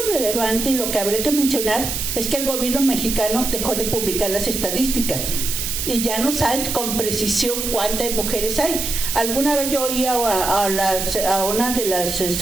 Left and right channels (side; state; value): right; noise; hiss, 3 dB below the sound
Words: relevante y lo que habría que mencionar es que el gobierno mexicano dejó de publicar las estadísticas y ya no saben con precisión cuántas mujeres hay. Alguna vez yo oí a una de las